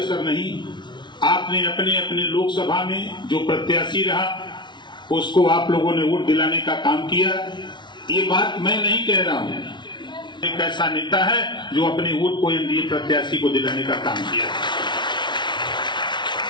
नहीं। आपने अपने अपने लोकसभा में जो प्रत्याशी रहा उसको आप लोगों ने वोट दिलाने का काम किया। ये बात मैं नहीं कह रहा हूं, एक ऐसा नेता है जो अपने वोट को एनडीए प्रत्याशी को दिलाने का काम किया।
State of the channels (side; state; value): right; late; 0.22 ms